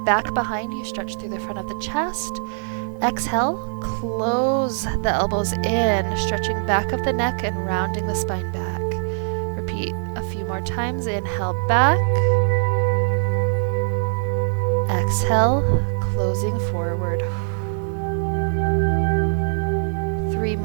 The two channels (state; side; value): silent; left; digital silence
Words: back behind you, stretch through the front of the chest. Exhale, close the elbows in, stretching back of the neck and rounding the spine back. Repeat a few more times. Inhale, back. Exhale, closing forward. 3